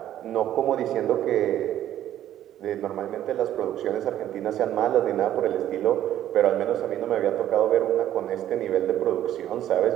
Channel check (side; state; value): left; quieter; 12.0 dB